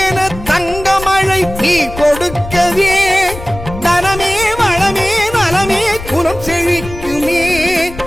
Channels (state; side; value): noise; left; rumble, 12 dB below the sound